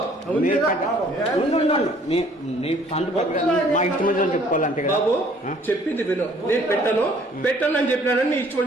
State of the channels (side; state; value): both; normal; correlation 0.58